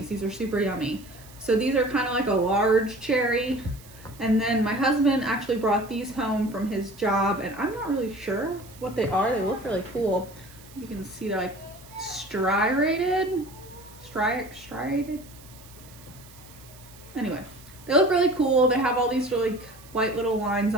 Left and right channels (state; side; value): noise; right; hiss, 22 dB below the sound